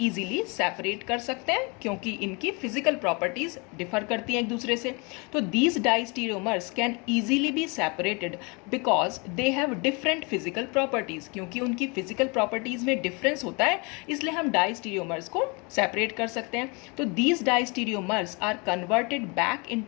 सेपरेट कर सकते हैं क्योंकि इनकी फिजिकल प्रॉपर्टीज डिफर करती हैं एक दूसरे से। तो these diastereomers can easily be separated because they have different physical properties. क्योंकि उनकी फिजिकल प्रॉपर्टीज में डिफरेंस होता है इसलिए हम डाइस्टीरियोमर्स को सेपरेट कर सकते हैं। तो these diastereomers are converted back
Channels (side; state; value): right; quieter; 30.0 dB